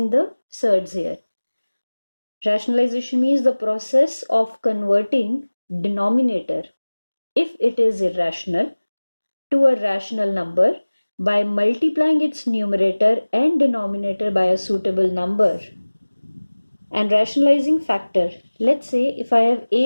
the surds here. Rationalization means the process of converting denominator, if it is irrational, to a rational number by multiplying its numerator and denominator by a suitable number. And rationalizing factor, let's say if I have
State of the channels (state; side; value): inverted; both; correlation -1.00